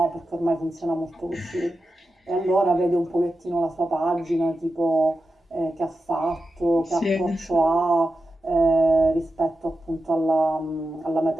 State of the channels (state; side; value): normal; both; correlation 0.91